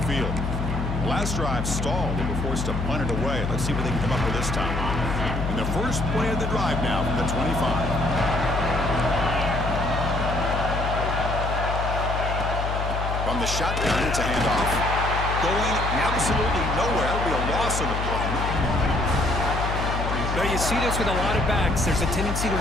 field. Last drive stalled. They were forced to punt it away. Let's see what they can come up with this time. And the first play of the drive now from the 25. From the shotgun, it's a handoff. Going absolutely nowhere. It'll be a loss on the play. Now, you see this with a lot of backs. There's a tendency to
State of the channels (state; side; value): noise; left; hum, 2 dB below the sound